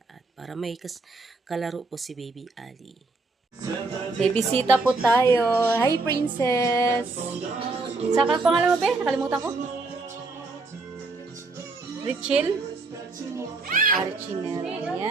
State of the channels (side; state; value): left; quieter; 3.6 dB